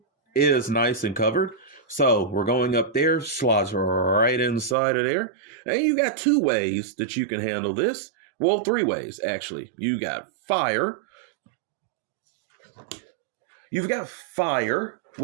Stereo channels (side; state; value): left; drops out; at 4.8 s